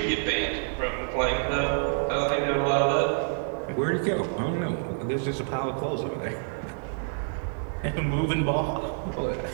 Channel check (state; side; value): silent; left; digital silence